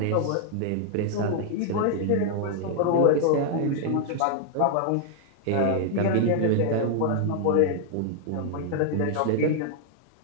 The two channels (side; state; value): both; different; correlation 0.00